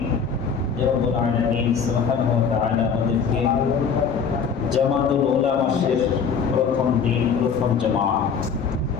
যে রব্বুল আলামিন সুবহানাহু ওয়া তাআলা আমাদেরকে জামাতুল উলামা মাসের প্রথম দিন প্রথম জামাত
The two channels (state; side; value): quieter; right; 6.2 dB